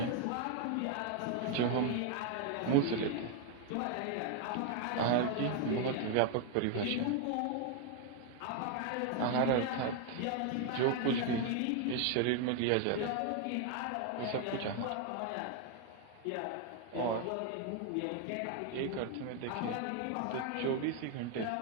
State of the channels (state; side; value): different; both; correlation 0.00